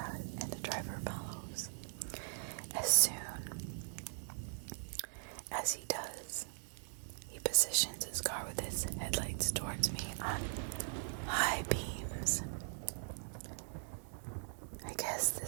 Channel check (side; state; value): left; silent; digital silence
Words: and the driver follows. As soon as he does, he positions his car with his headlights towards me on high beams. I guess